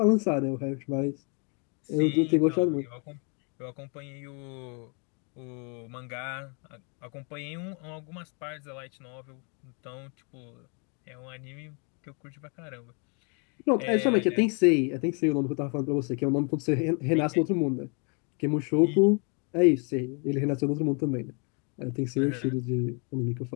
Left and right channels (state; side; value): quieter; right; 35.9 dB